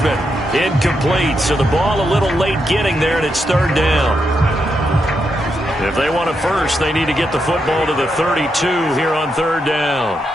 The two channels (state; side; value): normal; both; correlation 0.83